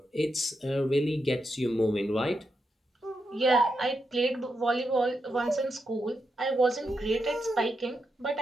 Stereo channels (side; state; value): both; normal; correlation 0.85